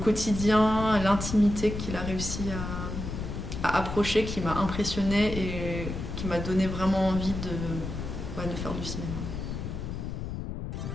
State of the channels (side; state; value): left; noise; rumble, 5 dB below the sound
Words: quotidien, l'intimité qu'il a réussi à approcher qui m'a impressionnée et qui m'a donné vraiment envie de faire du cinéma.